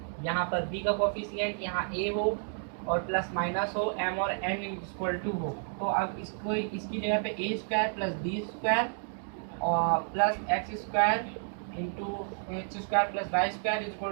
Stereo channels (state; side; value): silent; left; 57 dB below the other